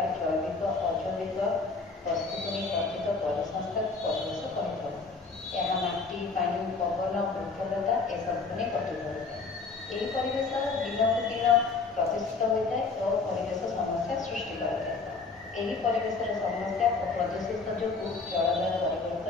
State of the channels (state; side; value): quieter; right; 4.3 dB